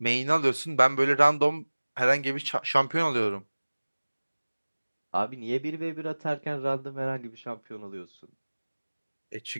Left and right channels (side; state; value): both; inverted; correlation -1.00